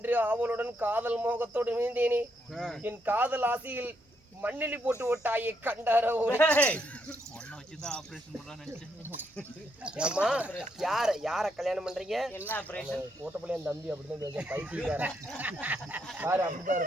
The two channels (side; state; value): both; normal; correlation 0.77